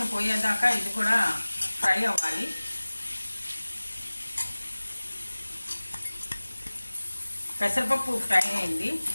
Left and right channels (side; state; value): both; inverted; correlation -1.00